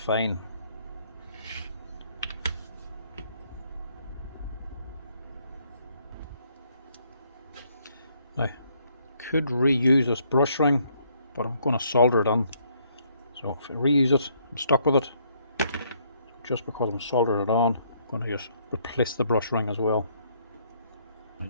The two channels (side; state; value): both; inverted; correlation -0.68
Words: Now, could reuse this brush ring, but I'm going to solder it on. So if I reuse it, I'm stuck with it. So just because I'm soldering it on, I'm going to just replace the brush ring as well.